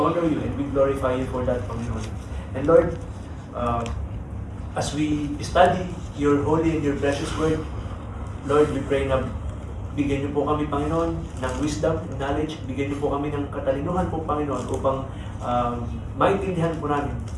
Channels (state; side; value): identical; both; correlation 1.00